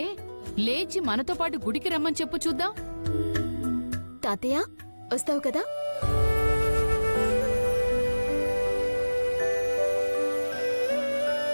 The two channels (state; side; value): inverted; both; correlation -1.00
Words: లేచి మనతో పాటు గుడికి రమ్మని చెప్పు చూద్దాం. తాతయ్య వస్తావు కదా?